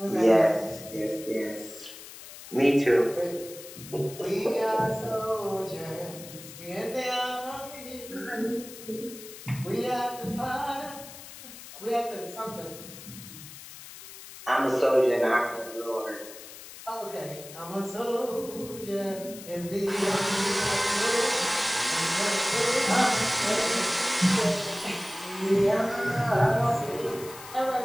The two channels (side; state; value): left; noise; hiss, 15 dB below the sound